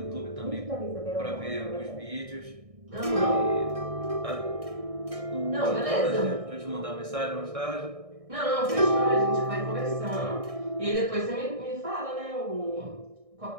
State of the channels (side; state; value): left; late; 1.6 ms